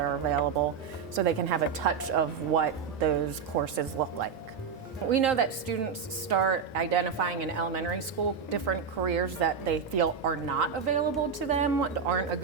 available so they can have a touch of what those courses look like. We know that students start identifying in elementary school different careers that they feel are not available to them, aren't a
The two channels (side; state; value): left; quieter; 6.2 dB